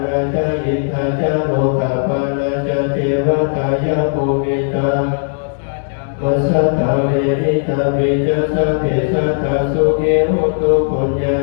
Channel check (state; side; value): silent; right; digital silence